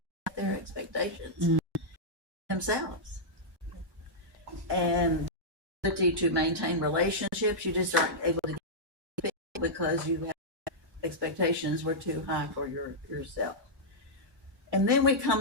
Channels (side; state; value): both; normal; correlation -0.09